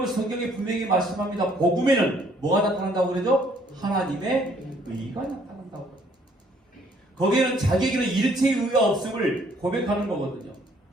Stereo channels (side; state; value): both; normal; correlation 0.63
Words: 성경에 분명히 말씀합니다. 복음에는 뭐가 나타난다고 그러죠? 하나님의 의가 나타난다고. 거기에는 자기에게는 일체의 의가 없음을 고백하는 거거든요.